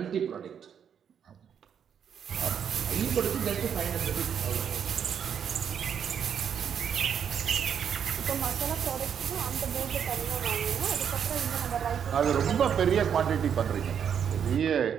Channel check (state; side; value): quieter; left; 8.0 dB